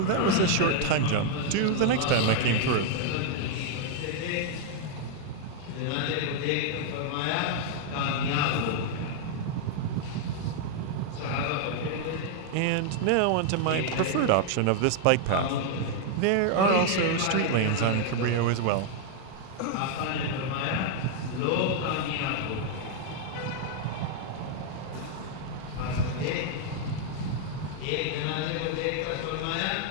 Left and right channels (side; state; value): both; different; correlation 0.00